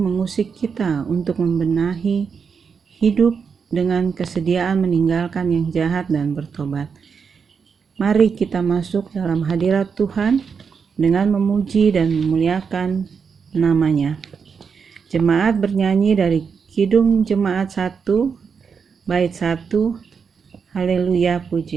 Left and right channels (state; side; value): quieter; left; 6.0 dB